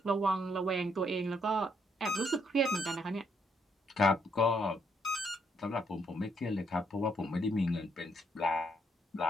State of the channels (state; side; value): normal; both; correlation 0.73